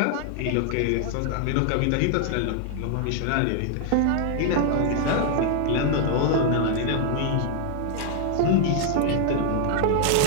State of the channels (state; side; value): different; both; correlation 0.00